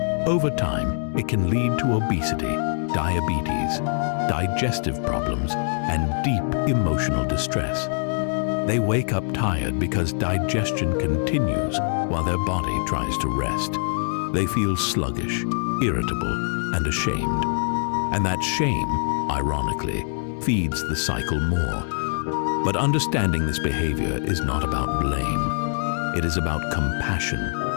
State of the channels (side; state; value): right; silent; 63 dB below the other